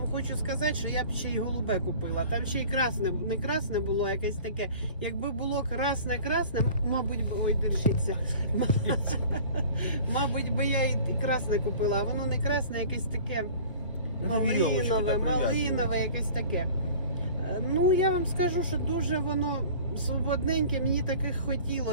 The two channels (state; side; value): inverted; both; correlation -0.44